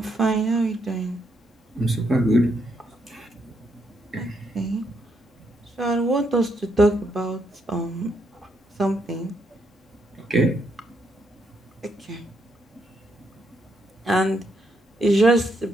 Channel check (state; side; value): normal; both; correlation 0.77